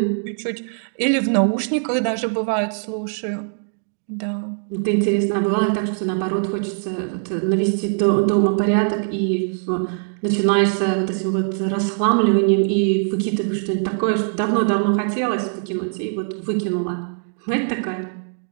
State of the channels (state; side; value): silent; left; 63 dB below the other